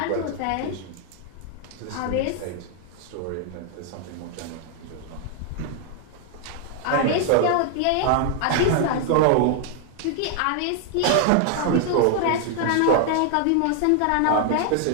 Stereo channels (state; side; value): different; both; correlation 0.00